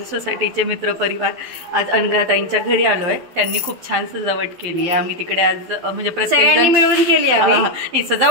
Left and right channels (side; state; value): left; late; 12 ms